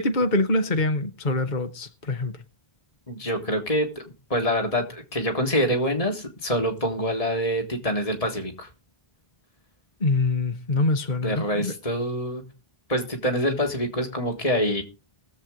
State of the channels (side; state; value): right; late; 1.7 ms